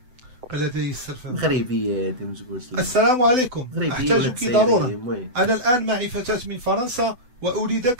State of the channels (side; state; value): left; late; 7.9 ms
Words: لدي السلفة مغربية هادي ما تقولش لي. السلام عليكم، أحتاجك ضرورة. أنا الآن معي فتاة من فرنسا